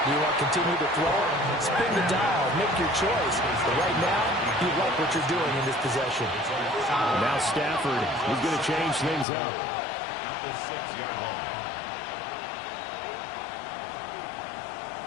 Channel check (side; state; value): right; drops out; at 9.2 s